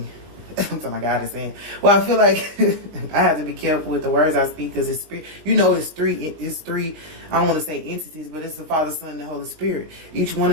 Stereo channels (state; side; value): late; left; 19 ms